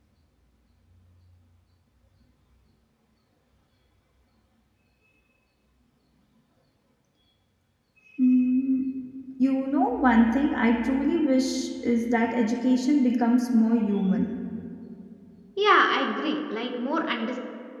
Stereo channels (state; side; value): identical; both; correlation 1.00